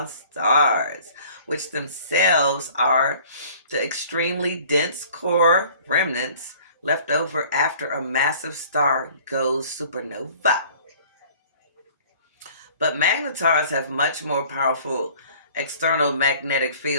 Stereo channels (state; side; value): inverted; both; correlation -0.52